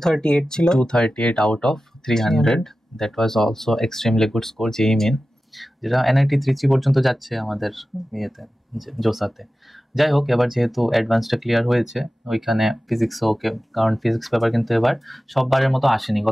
ছিল। 238 out of 300। That was also extremely good score যেই মেন, যেটা NIT ত্রিচি পর্যন্ত যাচ্ছে আমাদের ইয়েতে জোসাতে। যাই হোক, এবার যেহেতু অ্যাডভান্সটা ক্লিয়ার হয়েছে ওইখানে ফিজিক্সও ওকে, কারণ ফিজিক্স পেপার কিন্তু এবার সববারের মতো আসেনি,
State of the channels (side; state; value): both; normal; correlation 0.95